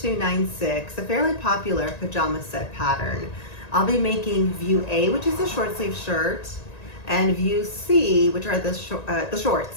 a fairly popular pajama set pattern. I'll be making view A, which is a short sleeve shirt, and view C, which are the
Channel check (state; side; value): late; right; 1.9 ms